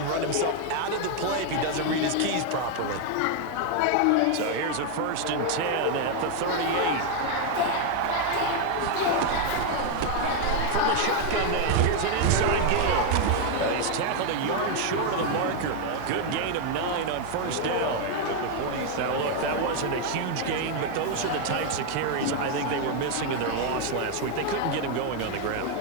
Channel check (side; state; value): both; different; correlation 0.01